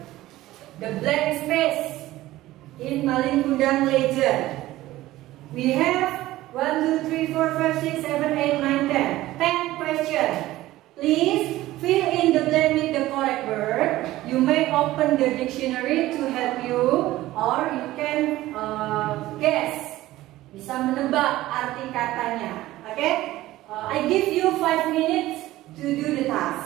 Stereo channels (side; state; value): left; quieter; 16.3 dB